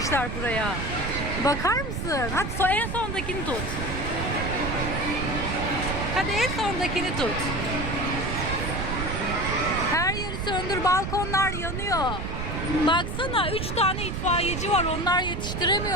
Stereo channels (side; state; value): right; noise; rumble, 4 dB below the sound